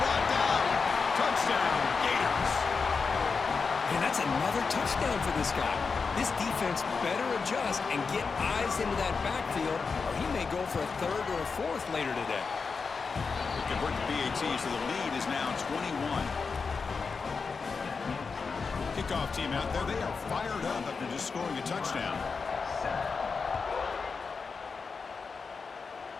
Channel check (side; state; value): right; quieter; 5.0 dB